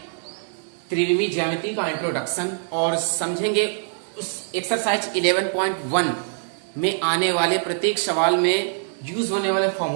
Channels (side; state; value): left; silent; 63 dB below the other